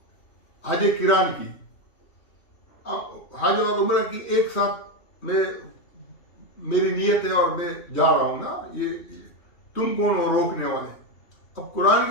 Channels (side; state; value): right; late; 3.2 ms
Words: हज किरान की, हज और उम्र की एक साथ मेरी नियत है और मैं जा रहा हूं ना, ये तुम कौन हो रोकने वाले? अब कुरान